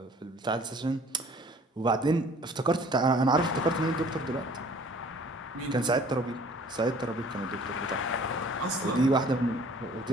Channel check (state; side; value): normal; both; correlation 0.53